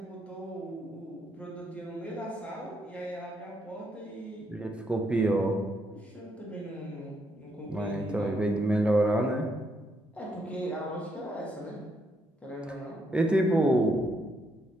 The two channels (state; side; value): normal; both; correlation 0.76